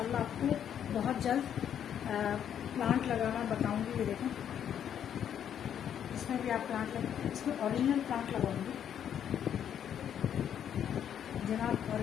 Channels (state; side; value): quieter; right; 9.2 dB